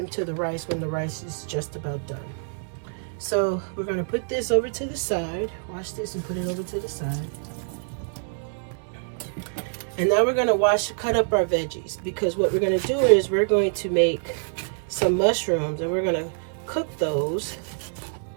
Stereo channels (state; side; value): silent; left; digital silence